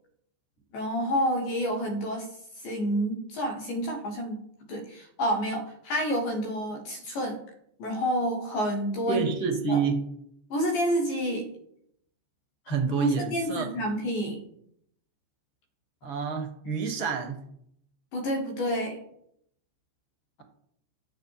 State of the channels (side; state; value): right; late; 14 ms